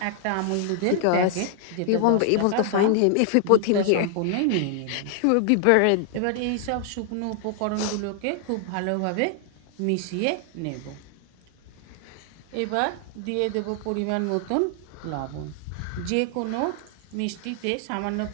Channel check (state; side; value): different; both; correlation 0.00